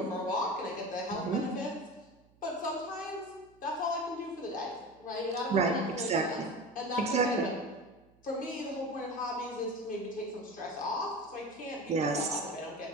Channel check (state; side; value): noise; right; hum, 30 dB below the sound